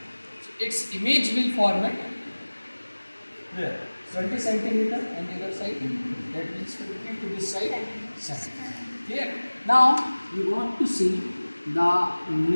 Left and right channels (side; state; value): both; inverted; correlation -1.00